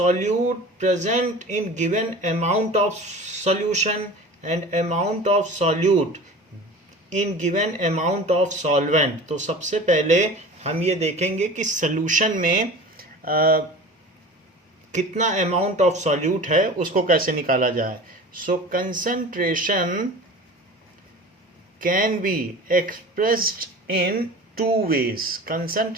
present in given amount of solution, and amount of solute in given amount of solvent. तो सबसे पहले हम ये देखेंगे कि सॉल्यूशन में कितना अमाउंट ऑफ सॉल्यूट है, उसको कैसे निकाला जाए. सो concentration can be expressed in two ways.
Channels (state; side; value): normal; both; correlation 0.38